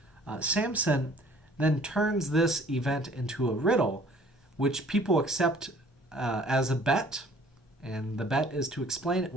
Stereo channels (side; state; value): both; normal; correlation 0.54